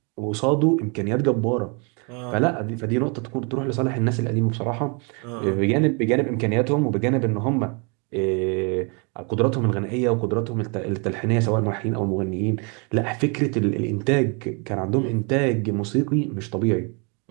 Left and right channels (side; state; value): left; quieter; 34.2 dB